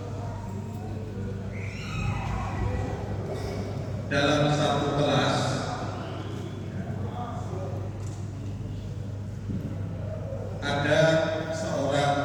dalam satu kelas ada seorang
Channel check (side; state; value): both; identical; correlation 1.00